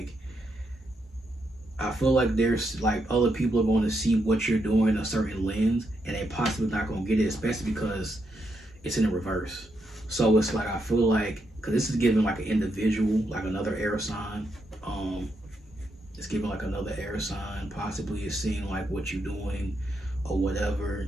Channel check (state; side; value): normal; both; correlation 0.81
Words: there's like other people are going to see what you're doing in a certain lens, and they possibly not going to get it, especially because it's in the reverse. So it's like, I feel like, because this is giving like an individual, like another air sign. It's giving like another air sign. Possibly it's seeing like what you're doing or